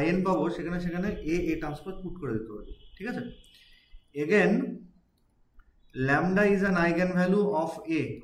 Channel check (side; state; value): both; identical; correlation 1.00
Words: IN পাবো সেখানে সেখানে A transpose পুট করে দিতে পারি, ঠিক আছে। Again lambda is an eigenvalue of A,